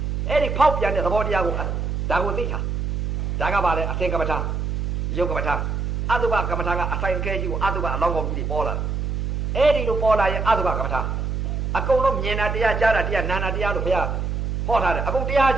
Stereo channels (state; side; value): noise; right; hum, 1 dB below the sound